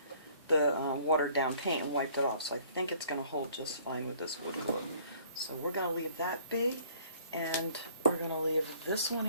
watered down paint and wiped it off. So I think it's going to hold just fine with this wood glue. So we're going to leave that be. And we're going to leave this one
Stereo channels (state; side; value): inverted; both; correlation -0.57